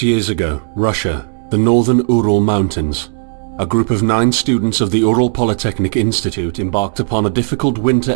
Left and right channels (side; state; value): left; silent; 70 dB below the other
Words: years ago, Russia, the northern Ural Mountains. A group of 9 students of the Ural Polytechnic Institute embarked upon a difficult winter